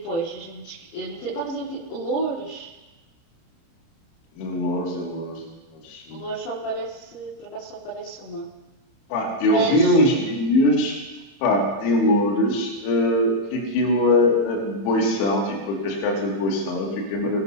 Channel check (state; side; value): late; right; 30 ms